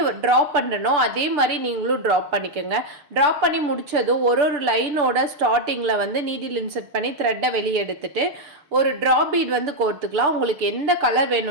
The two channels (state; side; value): late; left; 6.6 ms